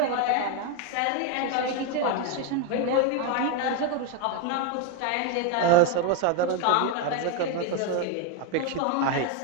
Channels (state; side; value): different; both; correlation 0.02